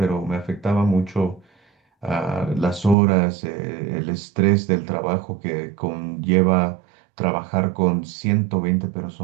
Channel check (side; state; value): left; drops out; at 3.0 s